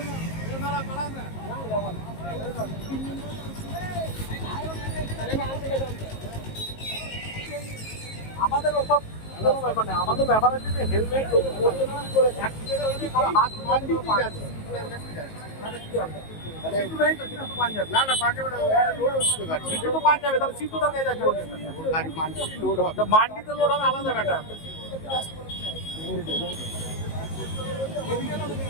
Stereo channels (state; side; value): late; right; 19 ms